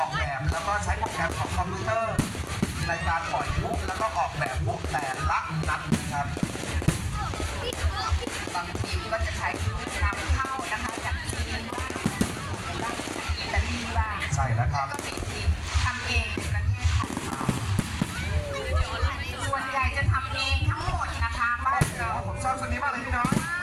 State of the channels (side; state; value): both; identical; correlation 1.00